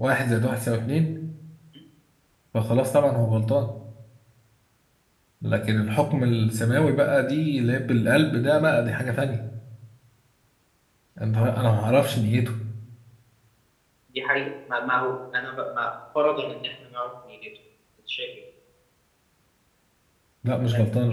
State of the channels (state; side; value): identical; both; correlation 1.00